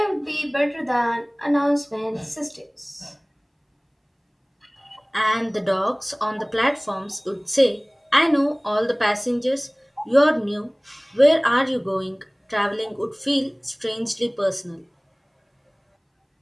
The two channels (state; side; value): identical; both; correlation 1.00